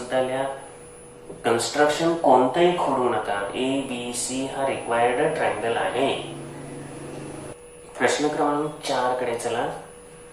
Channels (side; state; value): both; identical; correlation 1.00